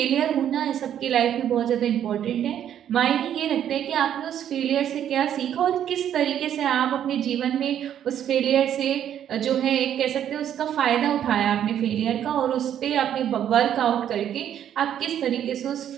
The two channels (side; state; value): left; quieter; 10.1 dB